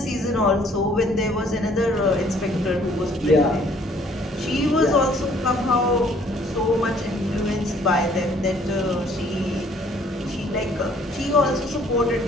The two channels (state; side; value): normal; both; correlation 0.60